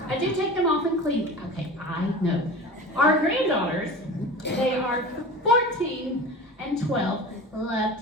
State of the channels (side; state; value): both; normal; correlation 0.35